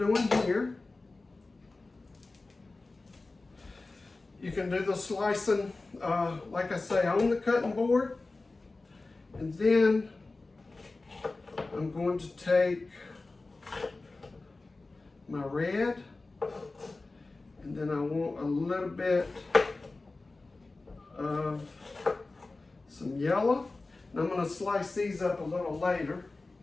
here. You can do the slicing, like I say, on the cutting board. And then I'm going to take my red, and then I want a little bit of some yellow. And I'm going to slice these up a little later.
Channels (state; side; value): quieter; right; 3.4 dB